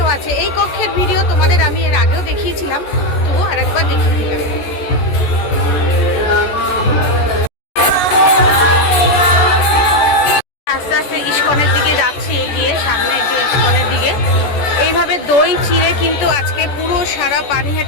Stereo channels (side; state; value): right; late; 14 ms